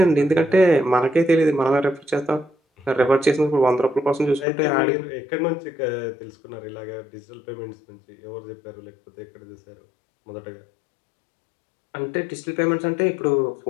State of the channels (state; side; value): drops out; right; at 4.5 s